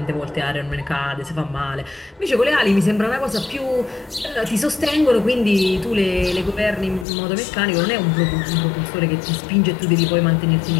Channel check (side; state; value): right; drops out; at 7.1 s